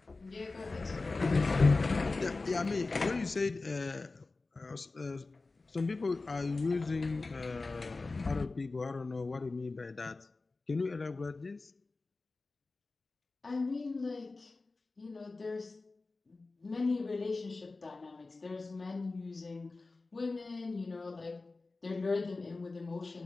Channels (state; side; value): quieter; right; 3.6 dB